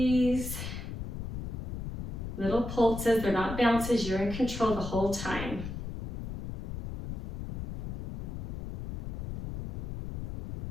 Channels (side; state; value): left; noise; rumble, 5 dB below the sound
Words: Little pulses, they're not bounces, you're in control the whole time.